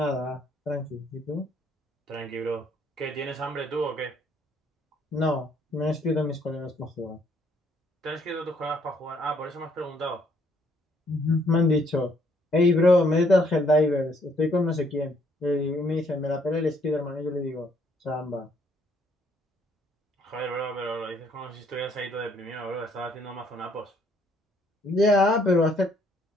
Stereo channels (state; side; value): normal; both; correlation 0.67